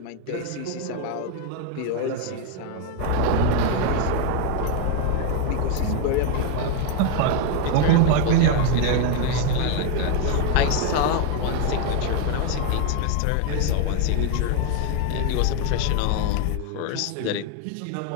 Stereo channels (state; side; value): different; both; correlation 0.01